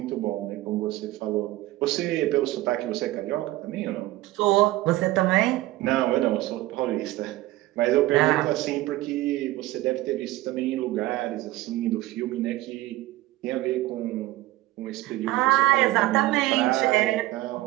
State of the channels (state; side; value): quieter; left; 17.2 dB